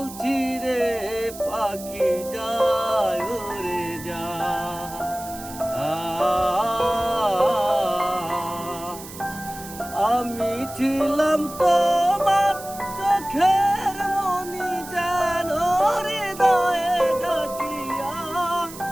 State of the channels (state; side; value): noise; right; hiss, 14 dB below the sound